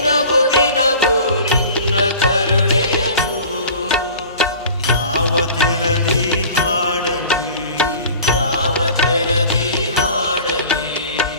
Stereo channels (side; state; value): both; inverted; correlation -0.42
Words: ದಿನವು ನಿನ್ನ ಕರುಣೆಯನು ಯಾವ ತೆರದಿ ಹಾಡಲಿ ಯಾವ ತೆರದಿ ಹಾಡಲಿ